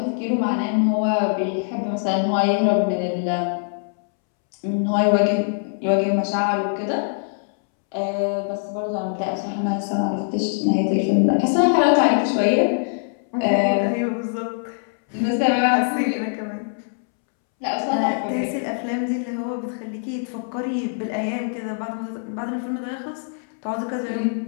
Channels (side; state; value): right; silent; 64 dB below the other